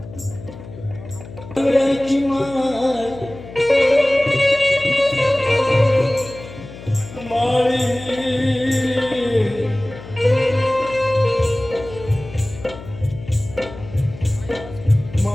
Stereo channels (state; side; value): noise; left; hum, 15 dB below the sound